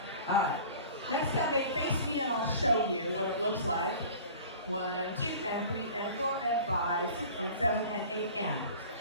All right. Next time they face me and I'll show you what it looks like. 1, 2, and 3, and 4, and 5, 6, and 7, and 8, and.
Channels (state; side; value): inverted; both; correlation -0.43